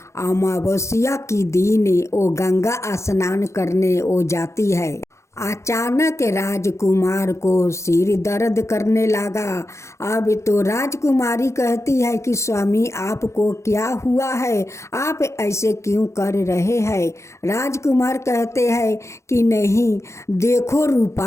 अमावस्या की दिन वो गंगा स्नान करने वो जाती है। अचानक राजकुमार को सिर दर्द करने लगा। अब तो राजकुमारी कहती है कि स्वामी आपको क्या हुआ है, आप ऐसे क्यों कर रहे हैं। राजकुमार कहते हैं कि नहीं देखो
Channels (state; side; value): late; right; 0.14 ms